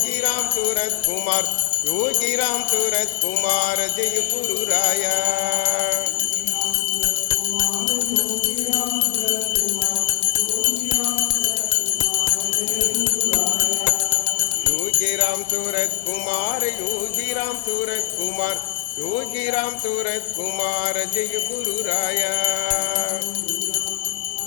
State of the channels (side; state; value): right; silent; 65 dB below the other